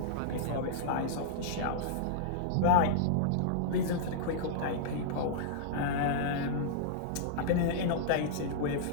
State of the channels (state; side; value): different; both; correlation -0.02